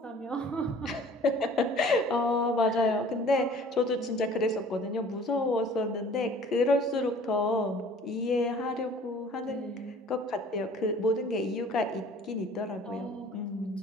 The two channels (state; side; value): normal; both; correlation 0.50